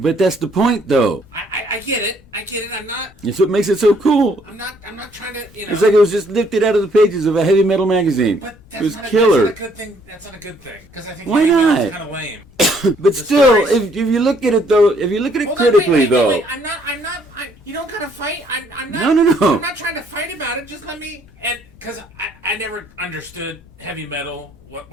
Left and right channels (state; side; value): noise; left; rumble, 27 dB below the sound